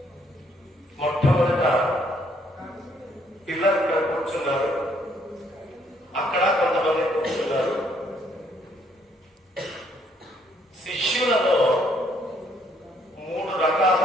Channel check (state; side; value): normal; both; correlation 0.68